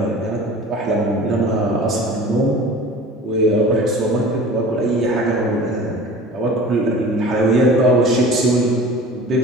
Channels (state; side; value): normal; both; correlation 0.41